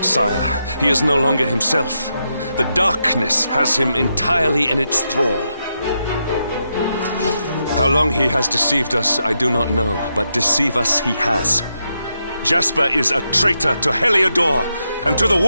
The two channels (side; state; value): both; inverted; correlation -0.84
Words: sire. He is no longer himself. The darkness has him entirely in its thrall. How long he has deceived us, I do not know, but deceive us he has. Jasper is a traitor to Heliodor and to the